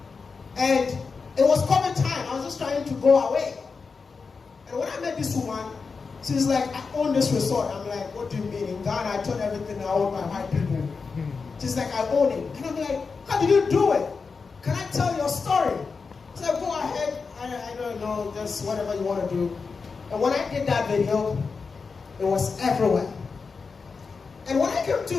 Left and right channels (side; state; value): right; quieter; 4.9 dB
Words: And it was COVID time. I was just trying to go away. And when I met this woman, she's like, I own this resort. I'm like, what do you mean? In Ghana, I told everything I own by white people. She's like, I own it. And I'm like, how did you do it? Can I tell your story? She said, go ahead. I don't know, just whatever you want to do. And when I did that video, it was everywhere. And when I came